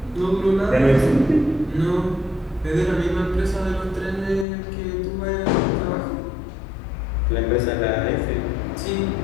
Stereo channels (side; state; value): right; drops out; at 4.5 s